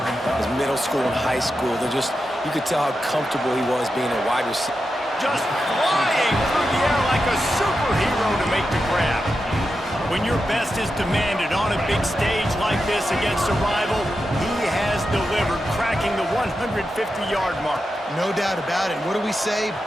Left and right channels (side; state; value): both; normal; correlation 0.89